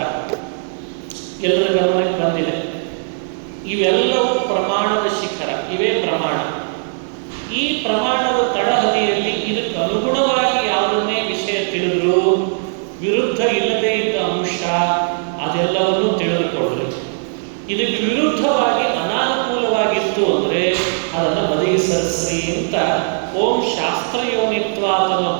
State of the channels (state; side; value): silent; left; digital silence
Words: ಎಲ್ಲರ ಗಮನಕ್ಕೆ ಬಂದಿದೆ. ಇವೆಲ್ಲವೂ ಪ್ರಮಾಣದ ಶಿಖರ, ಇವೇ ಪ್ರಮಾಣ. ಈ ಪ್ರಮಾಣದ ತಳಹದಿಯಲ್ಲಿ ಇದಕ್ಕೆ ಅನುಗುಣವಾಗಿ ಯಾವುದನ್ನೇ ವಿಷಯ ತಿಳಿದ್ರು ವಿರುದ್ಧ ಇಲ್ಲದೇ ಇದ್ದ ಅಂಶ ಅದೆಲ್ಲವನ್ನೂ ತಿಳಿದುಕೊಳ್ಳ್ರಿ. ಇದಕ್ಕೆ ವಿರುದ್ಧವಾಗಿ ಅನಾನುಕೂಲವಾಗಿತ್ತು ಅಂದರೆ ಅದನ್ನು ಬದಿಗೆ ಸರಿಸ್ರಿ ಅಂತ ಓಂ ಶಾಸ್ತ್ರಯೋನಿತ್ವ ಅನ್ನೋ